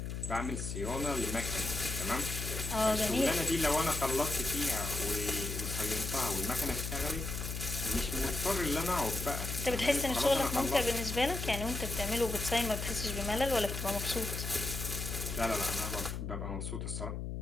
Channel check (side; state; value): left; noise; hum, 5 dB below the sound